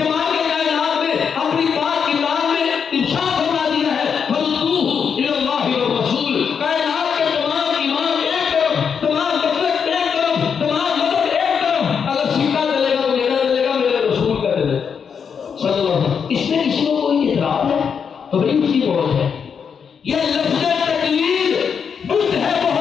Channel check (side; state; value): right; quieter; 6.7 dB